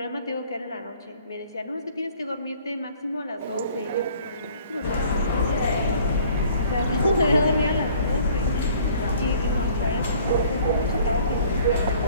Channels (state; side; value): inverted; both; correlation -0.54